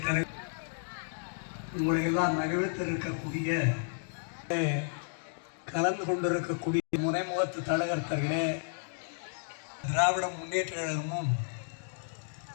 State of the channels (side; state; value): right; silent; digital silence